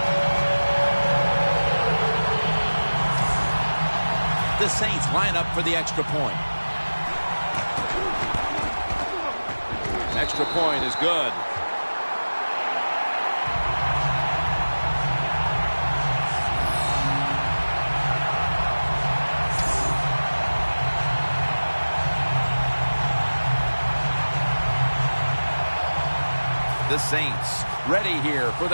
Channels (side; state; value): both; inverted; correlation -1.00